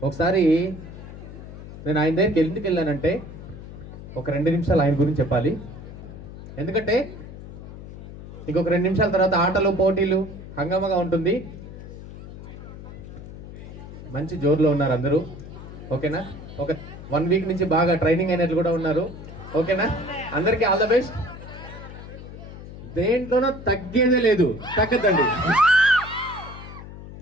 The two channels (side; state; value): left; noise; hum, 13 dB below the sound